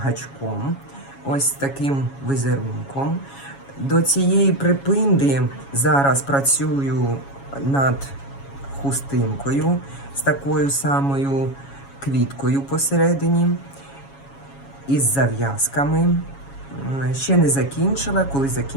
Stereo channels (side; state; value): right; late; 7.2 ms